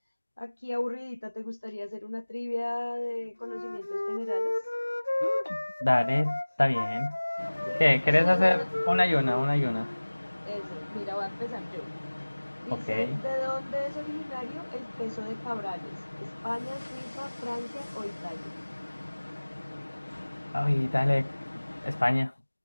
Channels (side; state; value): both; inverted; correlation -1.00